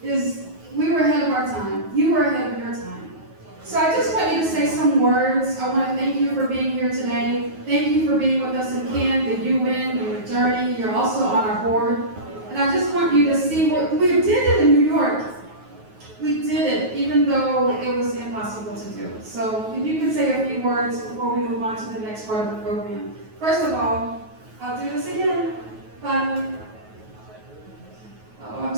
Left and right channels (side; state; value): left; late; 9.3 ms